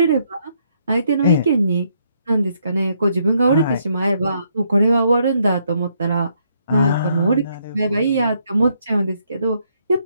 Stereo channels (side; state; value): both; inverted; correlation -0.73